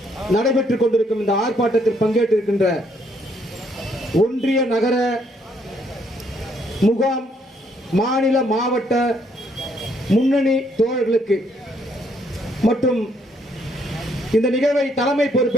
நடைபெற்றுக் கொண்டிருக்கும் இந்த ஆர்ப்பாட்டத்தில் பங்கேற்றிருக்கின்ற ஒன்றிய நகர முகாம் மாநில மாவட்ட முன்னணி தோழர்களுக்கு மற்றும் இந்த நிகழ்வை தலைமை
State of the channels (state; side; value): normal; both; correlation 0.70